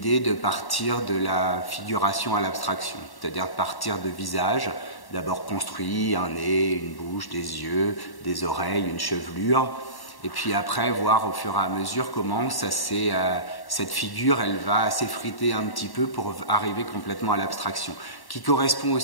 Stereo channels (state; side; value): late; right; 1.1 ms